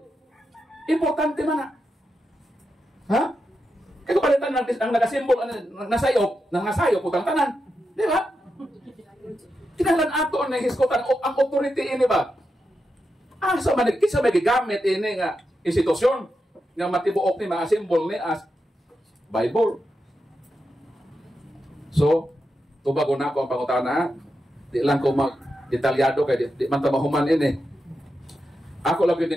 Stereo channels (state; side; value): normal; both; correlation 0.87